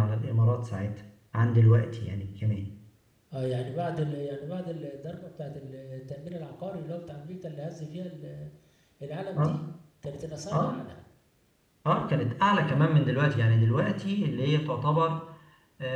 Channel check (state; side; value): identical; both; correlation 1.00